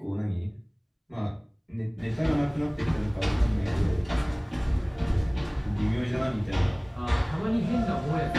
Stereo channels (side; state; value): both; identical; correlation 1.00